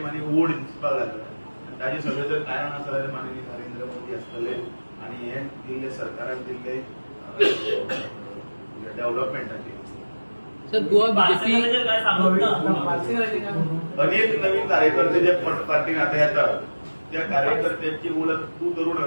आनी ओड दिसपाक लागला. ताजें सगळें जर कारण आसा जाल्यार माननीय नरेंद्र मोदी आसतले आनी हे दिल्ले सरकारान दिल्ले डेव्हलपमेंटाचेर. सर गोवा बीजेपी काय सांगत ना अनेक नवीन कार्यकर्ते जे पार्टीन आता येतात त्या कार्यकर्त्यांची ओळख तू तरुण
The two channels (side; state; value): both; inverted; correlation -1.00